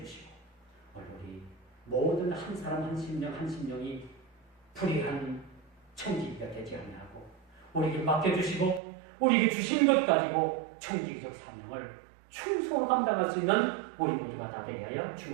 오늘 우리 모든 한 사람 한 심령이 불의한 청지기가 되지 아니하고 우리에게 맡겨주시고 우리에게 주신 것 가지고 청지기적 사명을 충성으로 감당할 수 있는 우리 모두가 다 되게 하여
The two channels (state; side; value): drops out; left; at 8.8 s